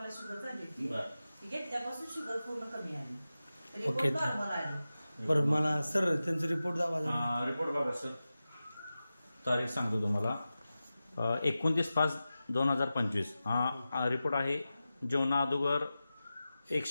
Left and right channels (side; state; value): both; inverted; correlation -0.94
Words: शुगर झाली होती. ती घेतल्यापासून शुगर पूर्ण कमी आली. तरी ओके. नॉर्मल आली. बरं मला सर त्यांचा रिपोर्ट दावा रिपोर्ट बघा सर. तारीख सांगतो तुम्हाला. 29/5/2025 हा रिपोर्ट आहे. जेवणा अगोदर